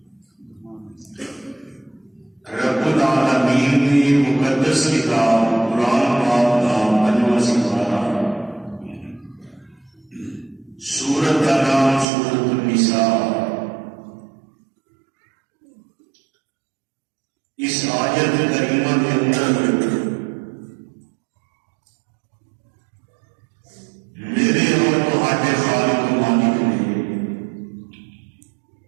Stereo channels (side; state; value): left; drops out; at 12.1 s